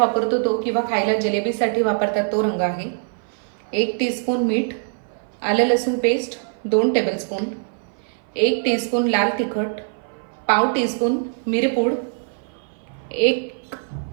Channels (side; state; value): left; silent; 57 dB below the other